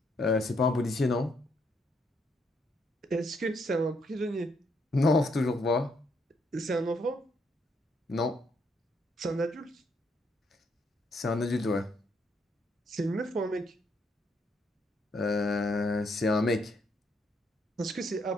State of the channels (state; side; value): normal; both; correlation 0.73